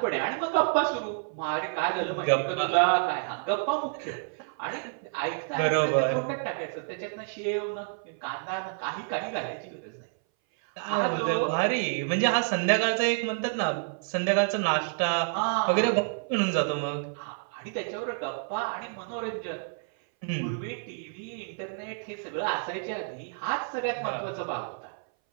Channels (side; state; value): left; silent; 59 dB below the other